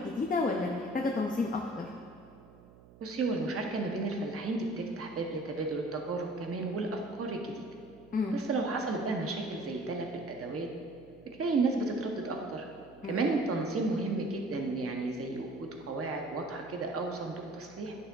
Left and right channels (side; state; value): right; noise; hum, 22 dB below the sound